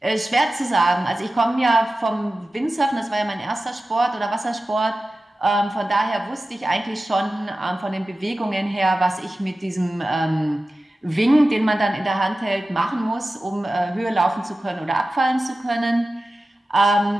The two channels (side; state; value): both; normal; correlation 0.95